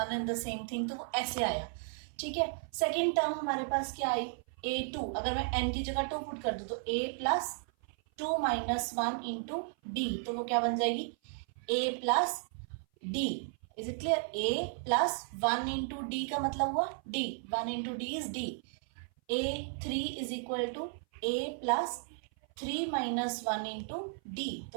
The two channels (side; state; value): left; silent; 55 dB below the other